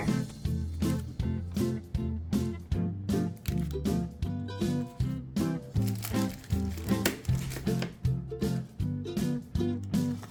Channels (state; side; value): identical; both; correlation 1.00